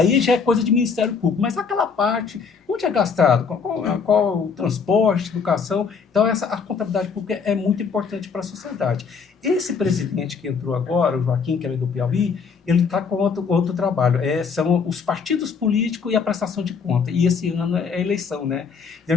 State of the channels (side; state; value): right; quieter; 5.7 dB